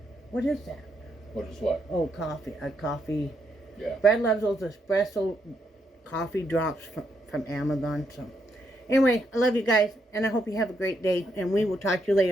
What is that? What is what? Oh, coffee. A coffee. Yeah. Brad loves those espresso coffee drops from Amazon. So anyway, I love you guys, and I hope you have a great day, and we will talk to you later.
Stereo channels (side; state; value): both; normal; correlation 0.78